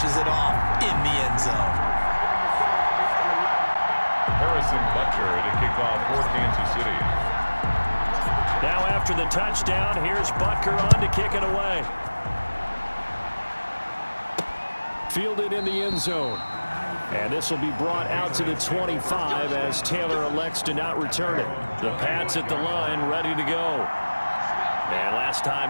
it off in the end zone. Harrison Butker to kick off for Kansas City. Now after the touchdown, here's Butker on to kick it away. Fielded in the end zone. And this will be brought out to the 25 as Taylor elects to not return it. The Pats at the line, ready to go. And last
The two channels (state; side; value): inverted; both; correlation -1.00